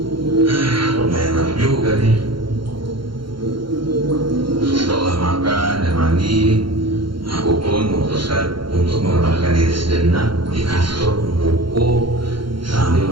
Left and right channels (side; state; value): left; late; 0.73 ms